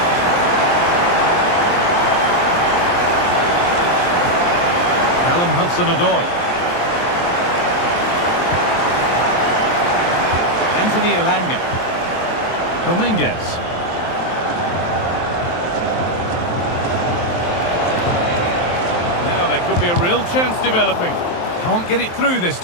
Hudson-Odoi. Anthony Elanga. Dominguez. Now there could be a real chance developing. Can't get it through this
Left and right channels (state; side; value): late; right; 23 ms